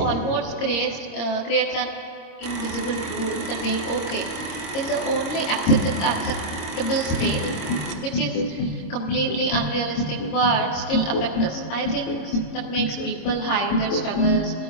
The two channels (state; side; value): late; right; 26 ms